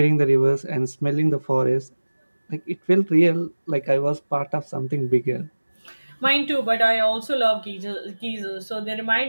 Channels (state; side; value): inverted; both; correlation -1.00